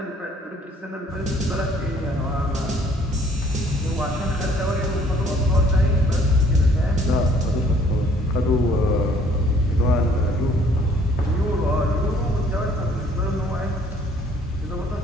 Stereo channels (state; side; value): normal; both; correlation 0.60